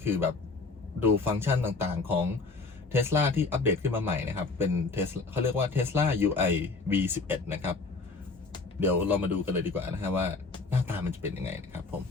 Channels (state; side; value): quieter; right; 3.9 dB